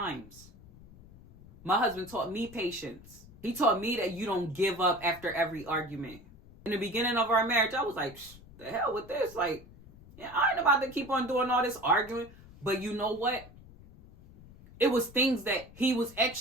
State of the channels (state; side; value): noise; left; rumble, 21 dB below the sound